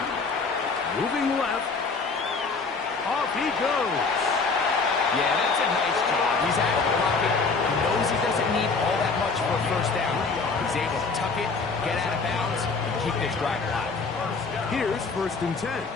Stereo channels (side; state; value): right; quieter; 4.4 dB